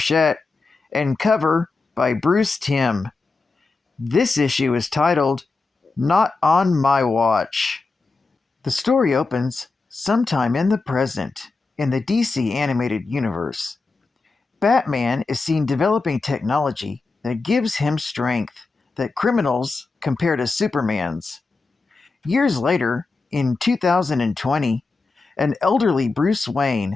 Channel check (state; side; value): quieter; right; 3.9 dB